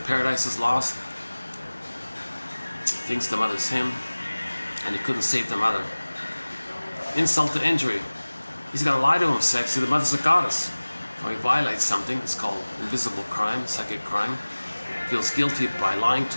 is lost. Thinks the mother's him, and he couldn't save the mother. Insult to injury. He's got to lie to himself. See, the mother's a goddess. Or he violates something. It's called invisible crime, psychic crime. Feels guilty by lying to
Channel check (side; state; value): both; inverted; correlation -1.00